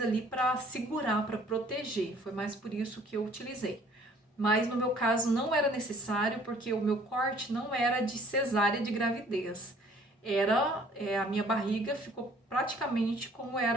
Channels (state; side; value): normal; both; correlation 0.57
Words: ali para segurar, para proteger. Foi mais por isso que eu utilizei. mas no meu caso não era necessário, porque o meu corte não era de cesárea de gravidez. A minha barriga ficou praticamente como